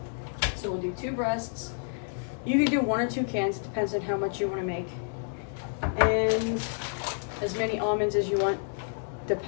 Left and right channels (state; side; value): silent; right; 58 dB below the other